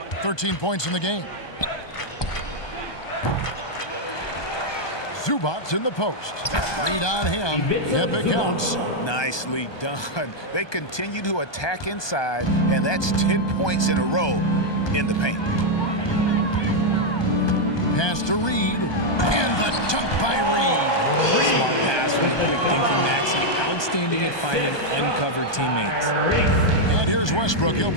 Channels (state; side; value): late; right; 1.2 ms